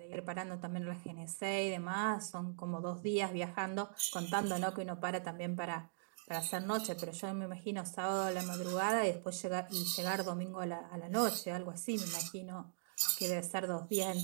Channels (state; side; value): silent; left; digital silence